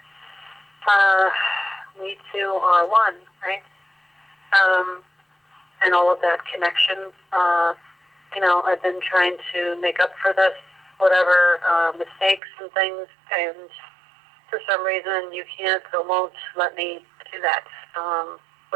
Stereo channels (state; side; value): drops out; left; at 12.4 s